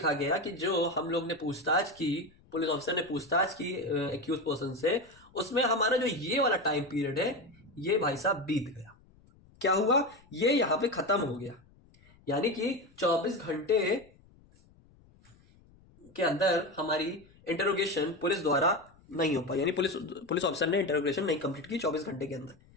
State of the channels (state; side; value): noise; left; rumble, 28 dB below the sound